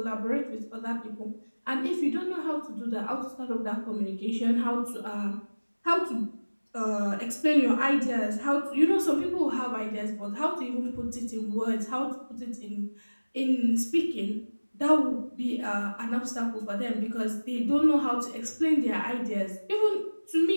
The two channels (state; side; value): inverted; both; correlation -1.00